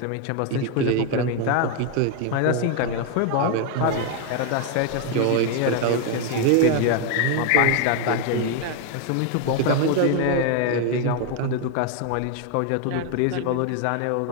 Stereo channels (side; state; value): both; different; correlation 0.01